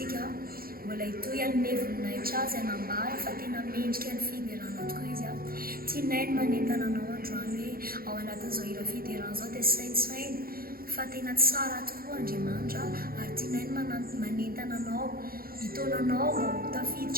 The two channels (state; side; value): late; left; 0.43 ms